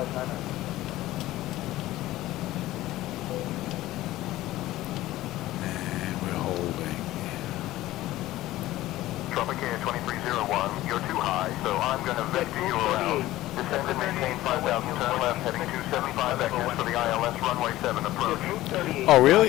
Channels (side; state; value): right; quieter; 16.1 dB